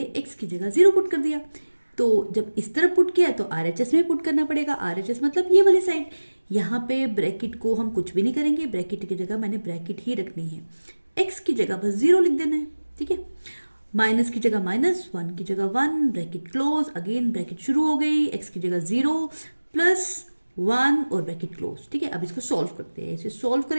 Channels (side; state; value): both; inverted; correlation -1.00